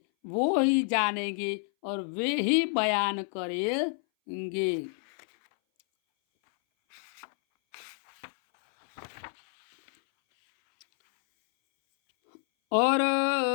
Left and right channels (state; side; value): silent; right; 59 dB below the other